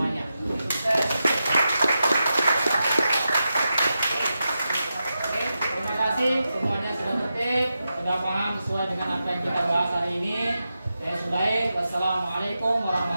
Semuanya sudah tertib, sudah paham sesuai dengan apa yang kita bahas hari ini. Saya sudahi. Wassalamualaikum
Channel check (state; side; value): inverted; both; correlation -0.89